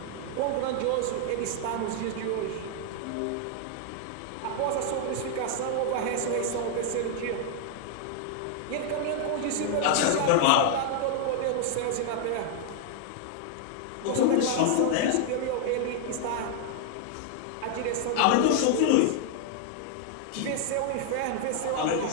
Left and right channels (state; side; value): different; both; correlation -0.01